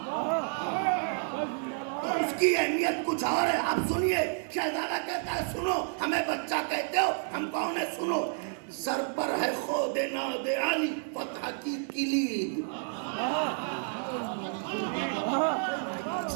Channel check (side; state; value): left; silent; 58 dB below the other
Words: तो उसकी अहमियत कुछ और है। आप सुनिए, शहजादा कहता है सुनो, हमें बच्चा कहते हो, हम कौन है सुनो। सर पर है खोदे नादे आली फतह की किलीद,